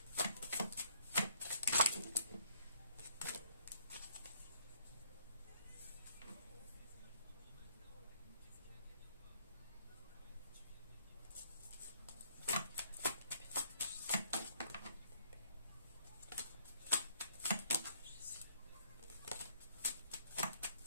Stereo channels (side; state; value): both; inverted; correlation -0.63